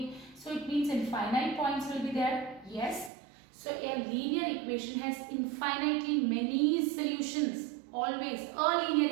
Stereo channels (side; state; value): left; drops out; at 3.1 s